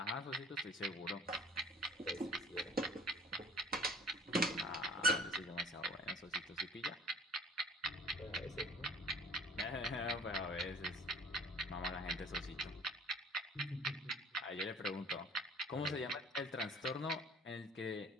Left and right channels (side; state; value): both; normal; correlation 0.48